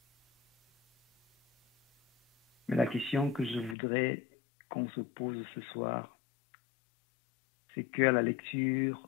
Mais la question que je voudrais qu'on se pose ce soir, c'est qu'à la lecture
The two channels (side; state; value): right; drops out; at 3.8 s